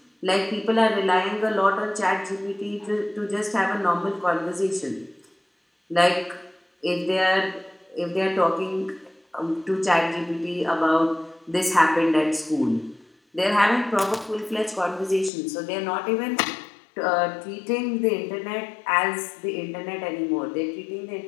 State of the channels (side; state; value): right; drops out; at 15.3 s